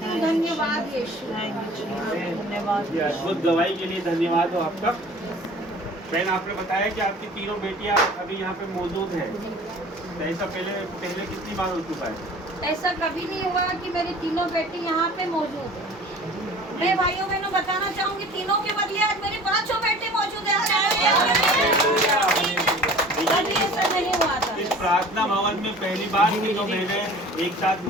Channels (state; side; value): normal; both; correlation 0.45